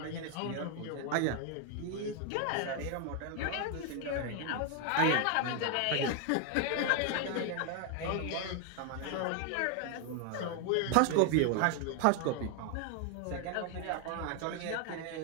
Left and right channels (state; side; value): different; both; correlation 0.00